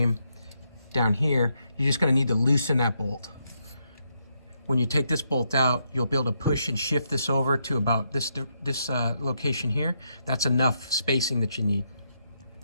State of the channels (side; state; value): both; inverted; correlation -0.79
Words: down here, you're just going to need to loosen that bolt. When you take this bolt out, you'll be able to push and shift this over to about this location here. That's enough spacing that you need.